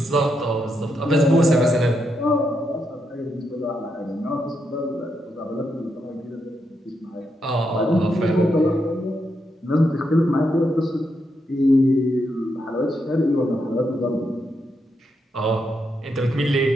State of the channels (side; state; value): both; normal; correlation 0.81